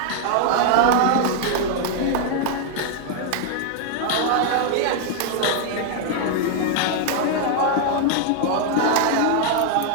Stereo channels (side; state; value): both; different; correlation 0.00